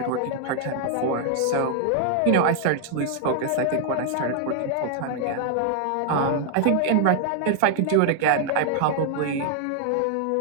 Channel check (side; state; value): both; different; correlation 0.00